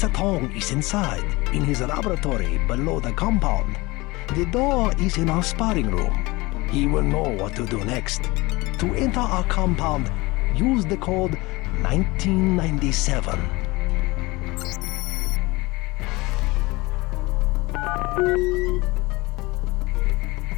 Tong is inside, in his laboratory below the compound. The door is in our sparring room. He will know what to do next. To enter our compound, use the code 1997.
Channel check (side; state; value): right; quieter; 22.5 dB